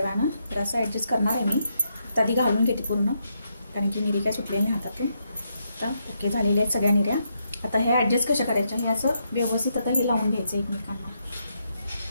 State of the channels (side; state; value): both; inverted; correlation -0.80